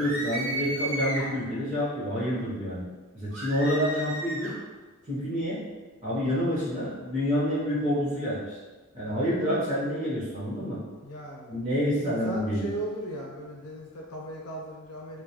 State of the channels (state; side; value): normal; both; correlation 0.40